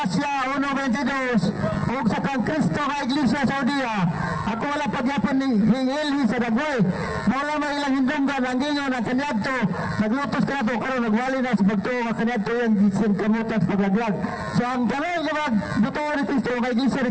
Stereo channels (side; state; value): both; identical; correlation 1.00